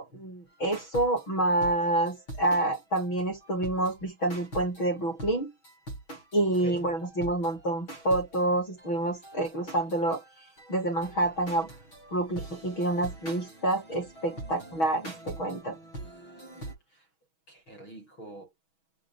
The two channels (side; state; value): right; late; 6.2 ms